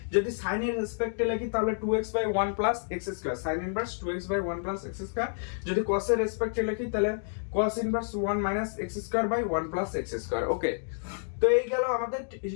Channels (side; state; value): right; silent; digital silence